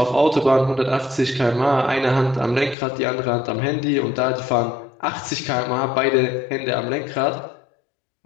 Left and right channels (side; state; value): right; drops out; at 2.8 s